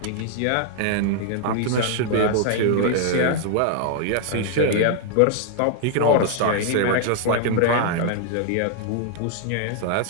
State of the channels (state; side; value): different; both; correlation 0.00